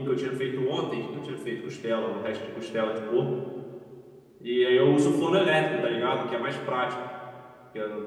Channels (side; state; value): both; identical; correlation 1.00